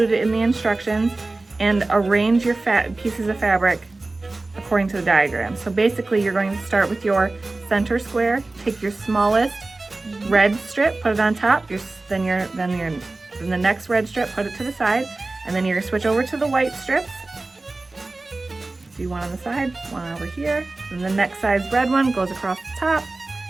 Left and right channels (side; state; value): left; quieter; 3.2 dB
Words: in the instructions and arrange your pieces of fabric according to the diagram. So basically you're going to start with your center square, take your smallest red strip, put it on top, then the next red strip, put it to the side, and then you're going to switch over to the white strips. Do one on the side, one over here, and the next size red one goes across the top,